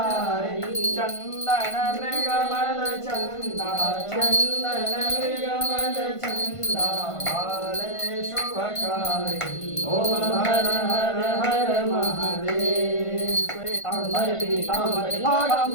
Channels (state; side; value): late; right; 1.5 ms